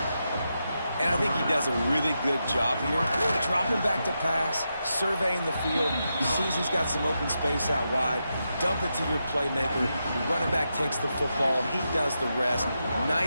And I think he does a really good job here. Dropping back to pass, surveying the field, sees he's got some open space out wide, dump it to your playmaker, your running back takes the football, he does the rest.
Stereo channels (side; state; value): both; inverted; correlation -0.86